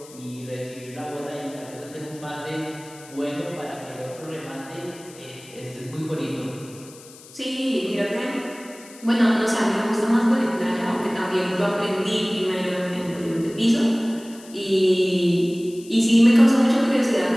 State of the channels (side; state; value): left; noise; hiss, 21 dB below the sound